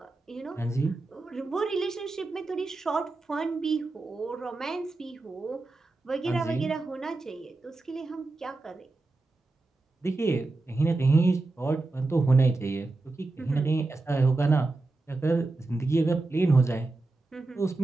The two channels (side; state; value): left; quieter; 3.3 dB